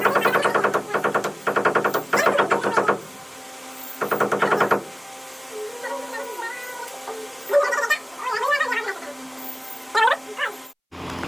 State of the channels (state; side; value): identical; both; correlation 1.00